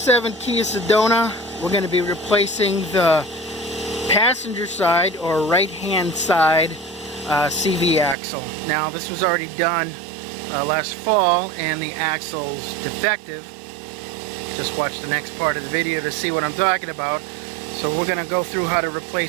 Kia Sedona. We're going to be replacing the passenger side or right hand side CV axle. Now this was already done last fall and the axle's defective. Just watch the next part of the video to see what I'm talking about. So we're going to go through how to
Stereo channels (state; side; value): drops out; left; at 8.2 s